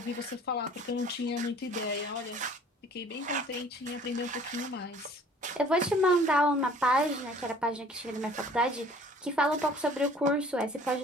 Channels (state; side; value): normal; both; correlation 0.51